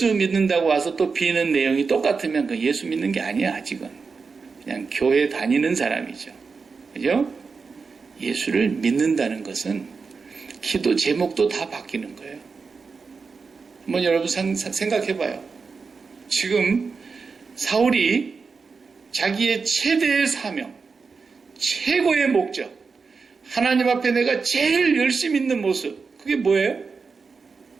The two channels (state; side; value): quieter; left; 4.9 dB